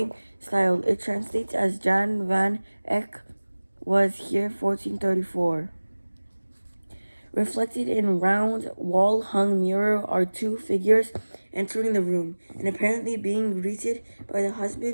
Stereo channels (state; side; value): inverted; both; correlation -1.00